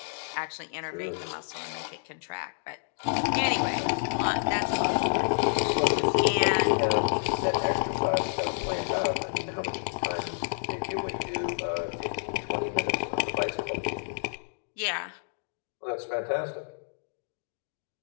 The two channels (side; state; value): right; silent; digital silence